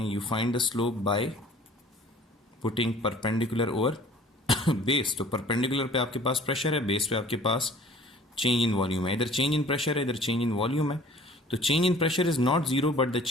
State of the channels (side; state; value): both; normal; correlation 0.50